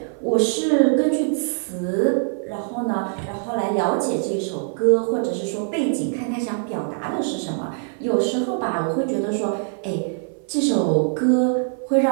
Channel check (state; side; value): silent; left; 56 dB below the other